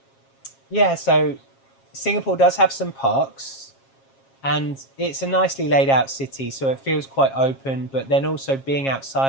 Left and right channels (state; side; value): late; right; 7.4 ms